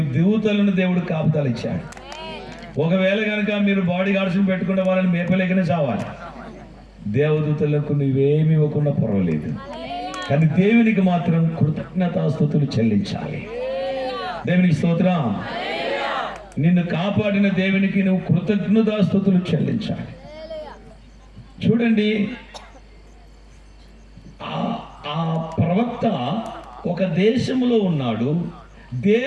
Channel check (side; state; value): both; identical; correlation 1.00